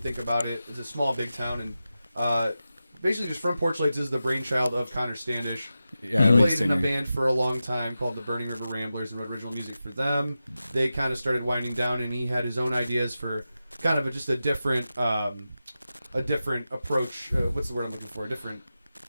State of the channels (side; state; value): both; inverted; correlation -0.92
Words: about it, it's a small big town, and basically just Front Porch Lights is the brainchild of Connor Standish. Yeah, he played in a band for a long time called the Burning River Ramblers and wrote original music for them. They kind of started winding down, and he had his own ideas for kind of just a different approach. What's the word I'm looking for? A different